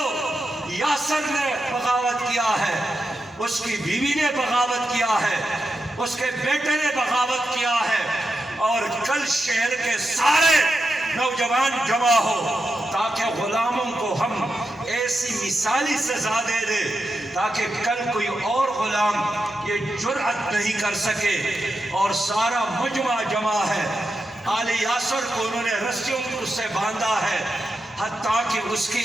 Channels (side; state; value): both; normal; correlation 0.88